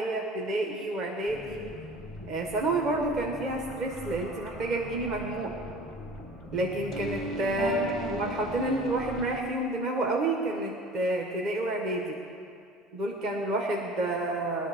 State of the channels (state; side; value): normal; both; correlation 0.43